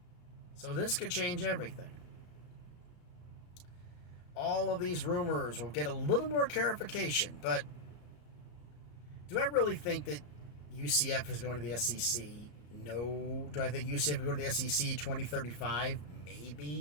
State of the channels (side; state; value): right; late; 34 ms